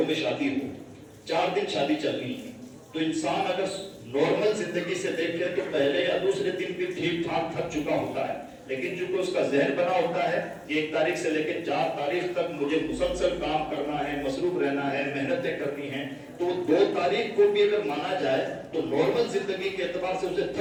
میں شادی ہو, 4 دن شادی چل رہی ہے, تو انسان اگر نارمل زندگی سے دیکھے تو پہلے یا دوسرے دن بھی ٹھیک ٹھاک تھک چکا ہوتا ہے, لیکن چونکہ اس کا ذہن بنا ہوتا ہے کہ 1 تاریخ سے لے کے 4 تاریخ تک مجھے مسلسل کام کرنا ہے, مصروف رہنا ہے, محنتیں کرنی ہیں, تو 2 تاریخ کو بھی اگر مانا جائے تو نارمل زندگی کے اعتبار سے اسے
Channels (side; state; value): both; identical; correlation 1.00